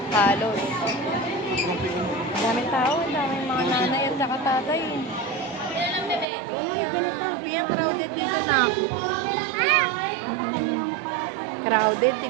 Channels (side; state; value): left; drops out; at 6.2 s